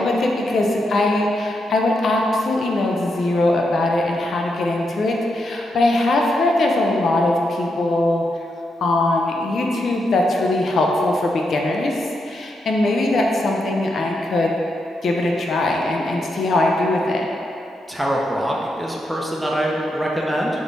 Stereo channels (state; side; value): normal; both; correlation 0.83